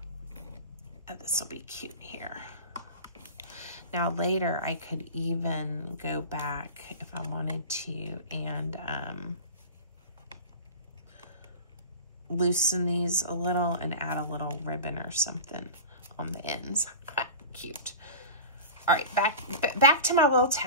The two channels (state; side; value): inverted; both; correlation -0.33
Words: This will be cute here. Now later I could even go back if I wanted to and loosen these a little and add a little ribbon or something on the ends. Cute. All right, back to my little